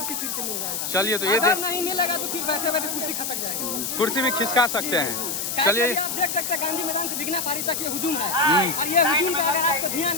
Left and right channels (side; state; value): left; noise; hiss, 3 dB below the sound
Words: फिर से मिल जाएगा। चलिए, तो ये अगर नहीं मिलेगा तो फिर बैठे बैठे कुर्सी खसक जाएगा, कुर्सी भी खिसका सकते हैं। चलिए, आप देख सकते हैं गांधी मैदान से भिखना पहाड़ी तक ये हुजूम है, और ये हुजूम पे अगर आपका ध्यान